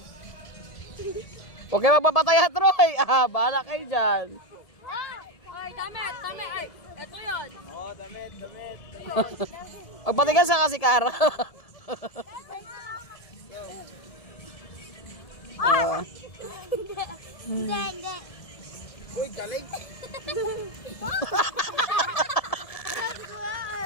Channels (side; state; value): right; late; 1.7 ms